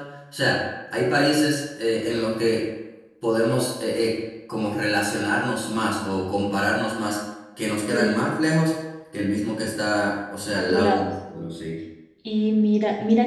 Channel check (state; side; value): identical; both; correlation 1.00